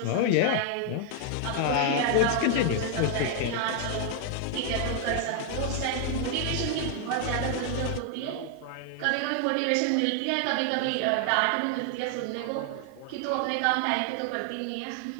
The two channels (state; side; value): different; both; correlation 0.00